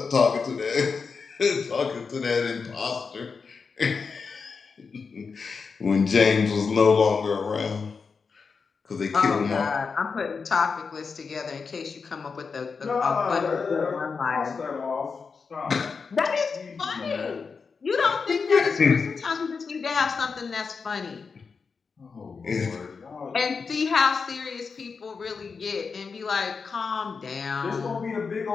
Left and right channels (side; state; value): right; quieter; 5.2 dB